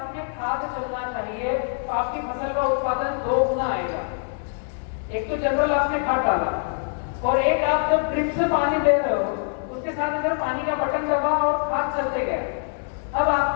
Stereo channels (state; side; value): silent; right; 62 dB below the other